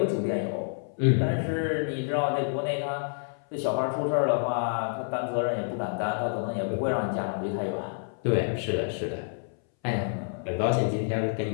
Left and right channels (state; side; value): silent; right; 59 dB below the other